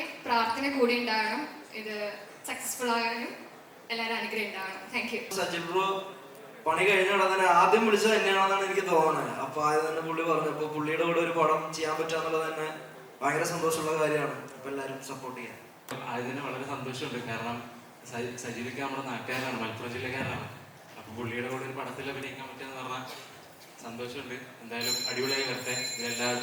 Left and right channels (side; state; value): both; identical; correlation 1.00